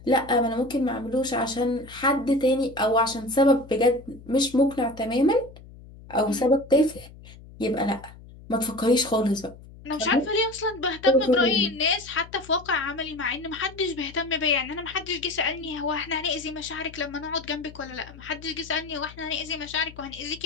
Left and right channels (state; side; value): noise; left; hum, 19 dB below the sound